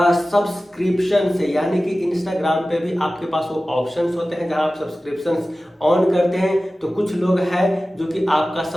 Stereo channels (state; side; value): normal; both; correlation 0.96